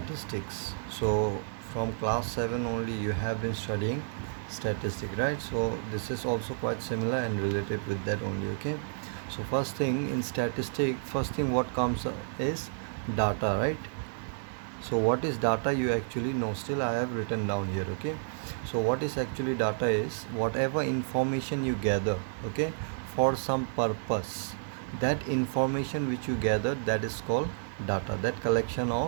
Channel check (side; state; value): left; silent; digital silence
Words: So from class 7 only you have been studying statistics, right? So this is also quite similar and related with that only, okay? So first thing in statistics, first thing what comes is data, right? So what is data you actually know, still I have written down here, okay? So what is actually data is whatever information you gather, okay, for some purpose. That information which you gather, that is called data. That collection